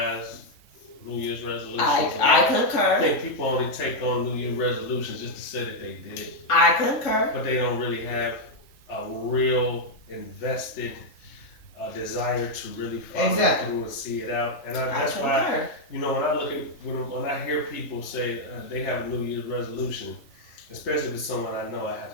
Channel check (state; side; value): late; right; 3.5 ms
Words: New Year's resolutions. I concur. I think people only take on New Year's resolutions just to say that they did it. I concur. But they don't really have a real invested desire to really follow through and see it out. And that's why, when I look at, when I hear people say they have a New Year's resolution, especially with someone I know, I